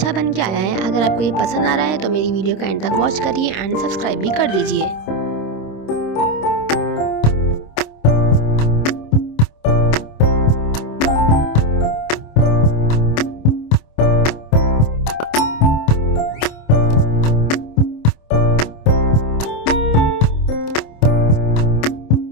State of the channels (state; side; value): late; right; 26 ms